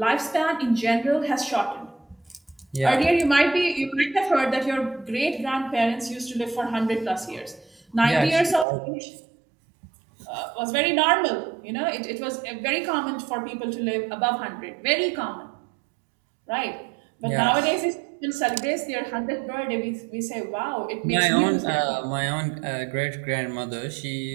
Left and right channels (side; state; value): left; drops out; at 8.7 s